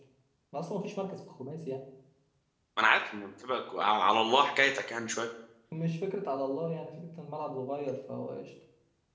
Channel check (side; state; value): both; identical; correlation 1.00